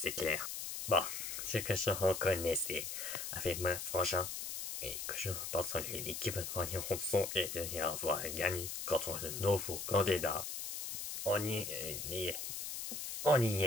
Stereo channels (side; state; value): left; noise; hiss, 5 dB below the sound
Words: clair. Bon, ce que je reconnaissais avec mon frangin et que je pense que l'équipe de Ranson est de y avoir gagné contre le nouveau candidat. On y